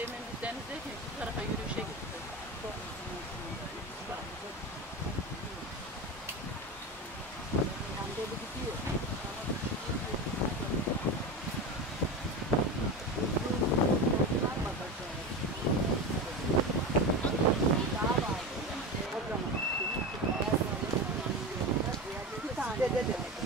biz denizdeyken şu tarafa yürüyüşe gitti.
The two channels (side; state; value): both; normal; correlation 0.24